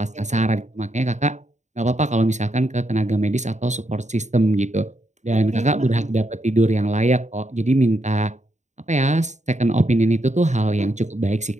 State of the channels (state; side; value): late; left; 0.34 ms